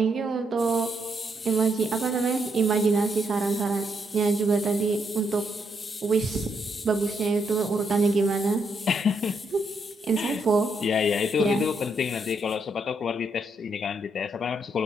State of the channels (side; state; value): both; normal; correlation 0.77